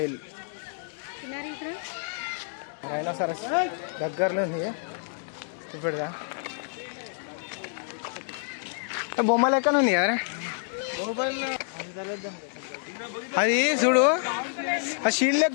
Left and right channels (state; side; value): silent; right; digital silence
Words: రైనోసరస్ దగ్గరలో ఉంది. చూపెడదా? బొమ్మ లెక్కన ఉంది కదా అది. చూడు ఆ షీల్డ్